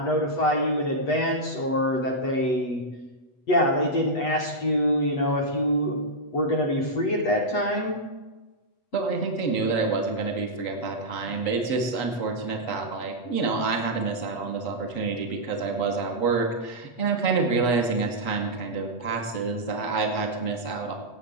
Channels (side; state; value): right; late; 8.2 ms